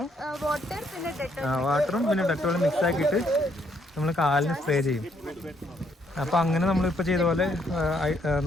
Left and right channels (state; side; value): normal; both; correlation 0.71